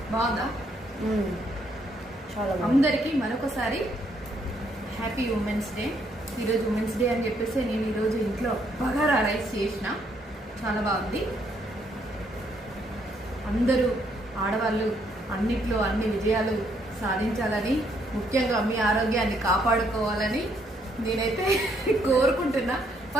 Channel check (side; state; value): both; normal; correlation 0.71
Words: బాగుందా? చాలా. అందరికీ మరొకసారి హ్యాపీ ఉమెన్స్ డే. ఈరోజు ఉమెన్స్ డే అని చెప్పేసి నేను ఈరోజు ఇంట్లో బగారా రైస్ చేసిన. చాలా బాగుంది. అందరూ ఆడవాళ్ళు అన్నిట్లో అన్ని విజయాలు సాధించాలని, ముఖ్యంగా మీ ఆరోగ్యాన్ని కాపాడుకోవాలని నేనైతే కోరుకుంటున్నా.